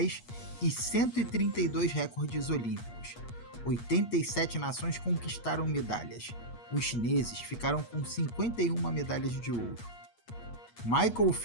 e 132 recordes olímpicos. 87 nações conquistaram medalhas. Os chineses ficaram com 51 medalhas de ouro. Michael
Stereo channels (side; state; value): right; late; 8.3 ms